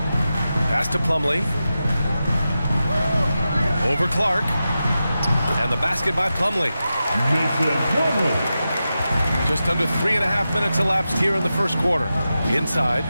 Pass to Plumlee. Over Clark. And the basket by Plumlee. Just under 3.5 minutes elapsed here in the first quarter. Inside.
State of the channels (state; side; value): inverted; both; correlation -0.91